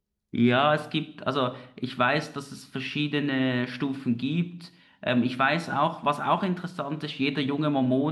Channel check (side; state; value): both; identical; correlation 1.00